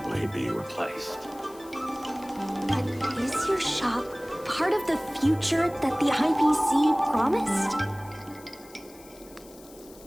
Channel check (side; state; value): left; noise; hiss, 22 dB below the sound